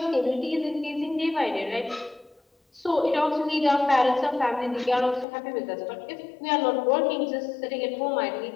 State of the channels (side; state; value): right; drops out; at 5.2 s